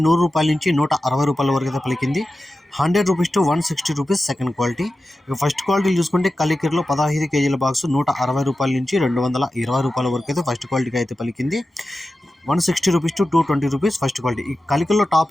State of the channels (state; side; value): normal; both; correlation 0.93